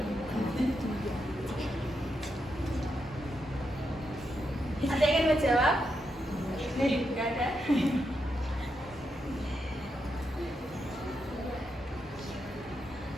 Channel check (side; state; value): both; normal; correlation 0.83